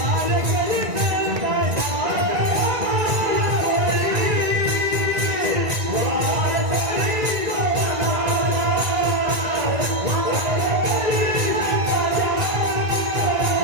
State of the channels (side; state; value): left; late; 1.9 ms